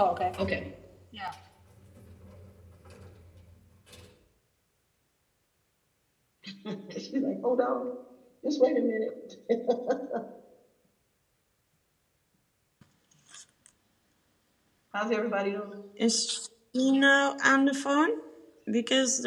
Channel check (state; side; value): identical; both; correlation 1.00